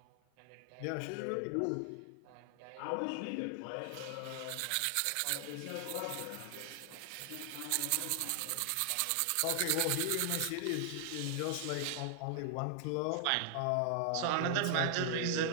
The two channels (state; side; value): different; both; correlation 0.00